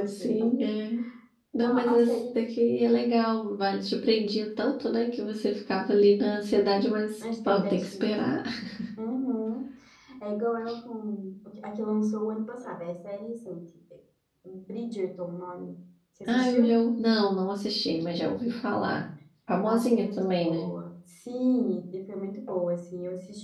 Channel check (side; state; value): both; identical; correlation 1.00